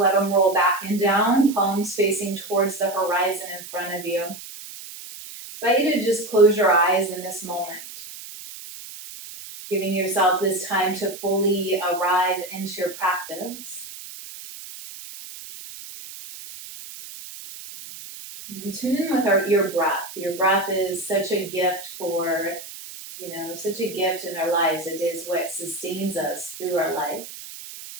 them roll back and down, palms facing towards the horizon in front of you. I invite you to just close your eyes in this moment. Giving yourself this time to fully arrive into your practice. And tune in with your breath. Your breath is such a gift such a gift in our lives. It is what sustains us through our life.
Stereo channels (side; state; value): right; noise; hiss, 13 dB below the sound